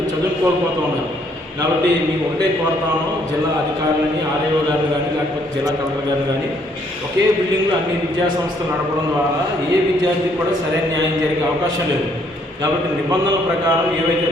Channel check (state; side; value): normal; both; correlation 0.67